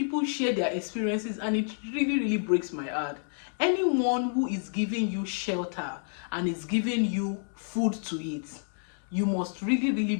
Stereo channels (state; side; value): silent; right; digital silence